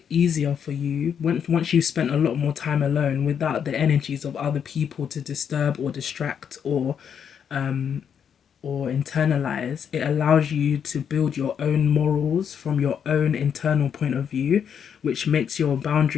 easier for you once you've spent a lot more time alone without the energies of other people to disturb or distract um or internalize. It allows you to build your own morals from your own internal point of view, which makes your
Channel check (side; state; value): right; quieter; 7.8 dB